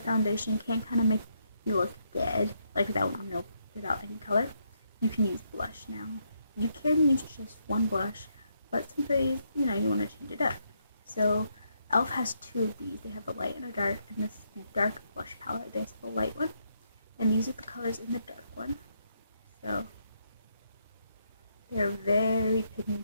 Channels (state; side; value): inverted; both; correlation -0.77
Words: foundation can kind of make you look dead, like without any color, you can use blush now. You can use just one blush, but some days, you know, you want to change it up. So e.l.f. has 2 of these. They have a light and a dark, and this is the dark blush palette. They have the light one, and these are the colors in the dark one. So they're very